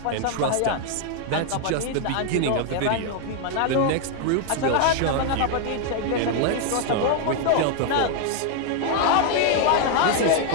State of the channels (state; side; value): different; both; correlation 0.00